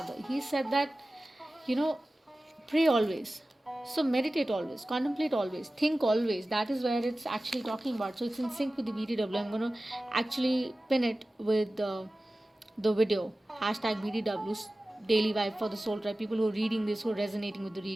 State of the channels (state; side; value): normal; both; correlation 0.96